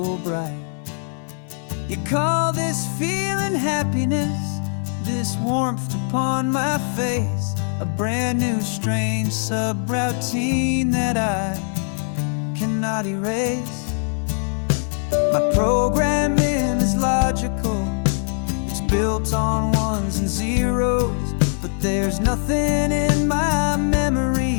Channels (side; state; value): right; silent; digital silence